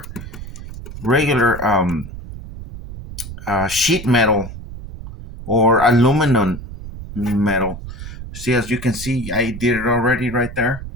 sheet metal or aluminum metal. See, as you can see, I did it already right there.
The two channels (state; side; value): noise; right; rumble, 12 dB below the sound